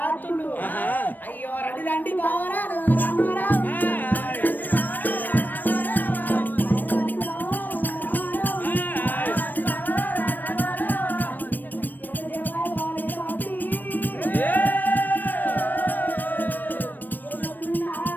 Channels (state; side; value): late; right; 0.089 ms